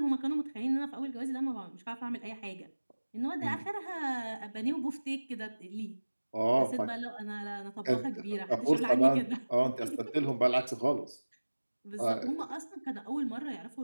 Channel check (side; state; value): both; inverted; correlation -1.00